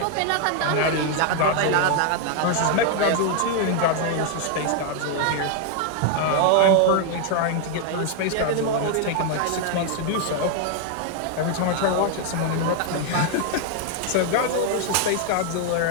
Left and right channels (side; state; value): both; different; correlation 0.00